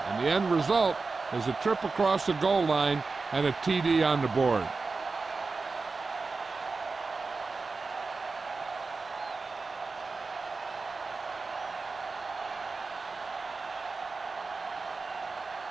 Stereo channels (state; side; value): quieter; left; 4.1 dB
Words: the end result is a trip across the goal line and a TD on the board.